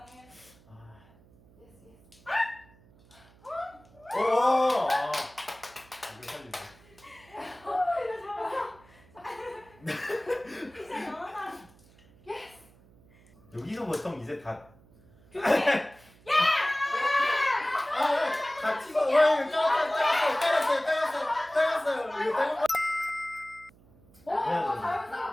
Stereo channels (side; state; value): right; noise; hum, 27 dB below the sound